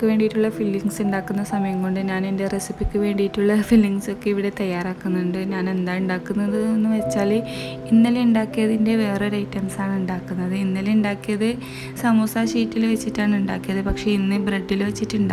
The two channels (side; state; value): both; identical; correlation 1.00